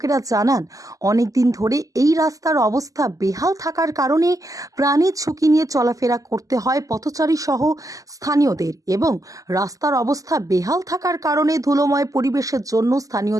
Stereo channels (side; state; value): left; late; 0.17 ms